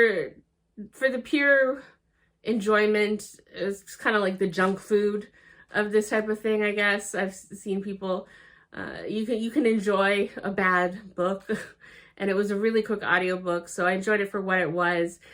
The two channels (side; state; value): both; identical; correlation 1.00